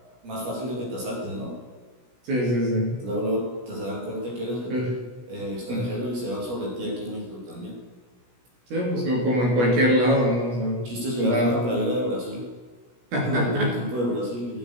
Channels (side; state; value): left; late; 16 ms